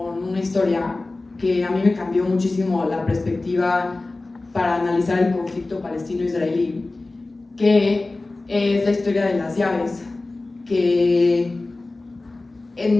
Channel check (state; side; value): quieter; right; 3.2 dB